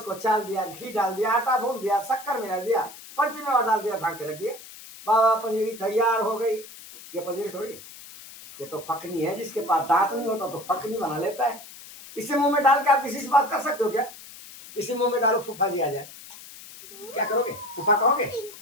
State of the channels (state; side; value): noise; left; hiss, 17 dB below the sound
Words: चाल दिया, घी डाल दिया, आटा भून दिया, शक्कर मिला दिया, पंचमेवा डाल दिया, ढाक के रख दिया, बाबा पंजीरी तैयार हो गई। ये पंजीरी थोड़ी, ये तो फकनी है। जिसके पास दांत नहीं होता तो फकनी बना लेता है। इसे मुंह में डाल के आप किसी से बात कर सकते हो क्या? इसी मुंह में डालो, फूफा जी आ जाए, क्या करोगे? फूफा कहोगे?